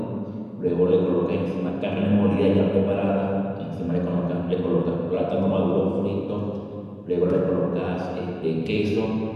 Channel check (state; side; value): identical; both; correlation 1.00